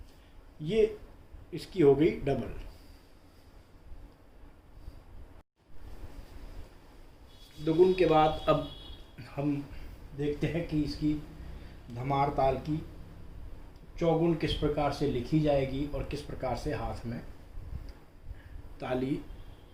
ये इसकी हो गई डबल। दुगुन के बाद अब हम देखते हैं कि इसकी धमार ताल की चौगुन किस प्रकार से लिखी जाएगी और किस प्रकार से हाथ में ताली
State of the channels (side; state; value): both; identical; correlation 1.00